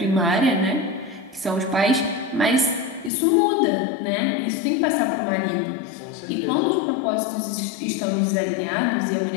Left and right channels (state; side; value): drops out; right; at 3.1 s